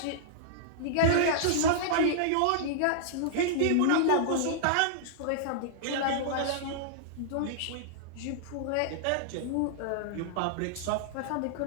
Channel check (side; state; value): both; different; correlation -0.02